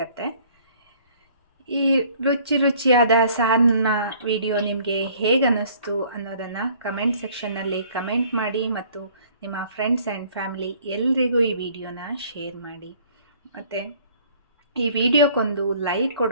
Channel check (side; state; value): both; inverted; correlation -0.56